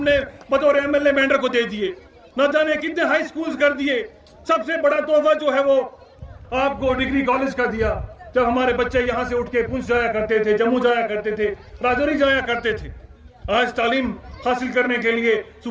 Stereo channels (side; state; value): both; identical; correlation 1.00